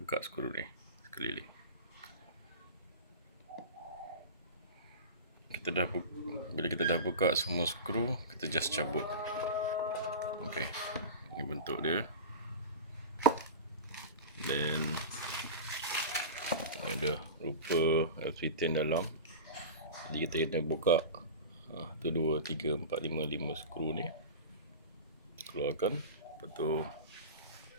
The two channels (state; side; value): inverted; both; correlation -0.30